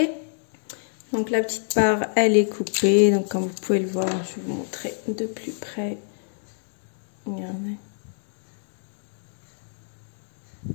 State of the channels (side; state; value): right; silent; digital silence